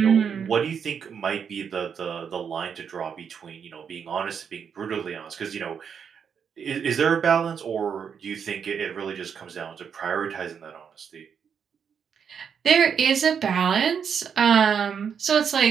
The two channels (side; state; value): left; quieter; 7.2 dB